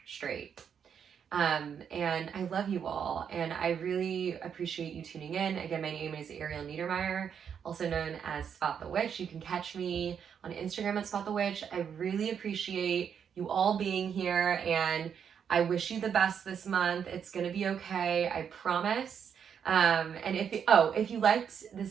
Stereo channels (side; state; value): left; quieter; 7.7 dB